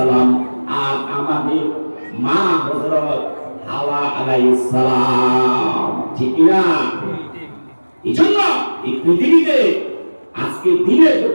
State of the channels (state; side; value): inverted; both; correlation -1.00